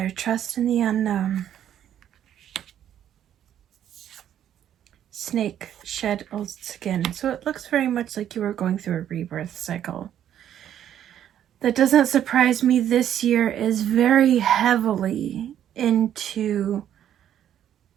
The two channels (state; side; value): quieter; left; 10.4 dB